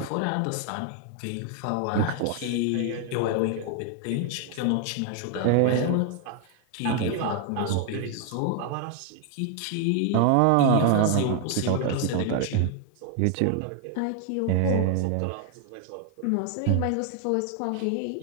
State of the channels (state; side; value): different; both; correlation 0.00